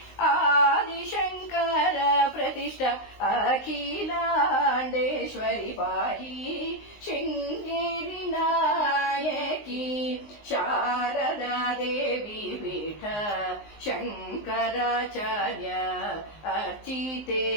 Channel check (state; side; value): late; right; 19 ms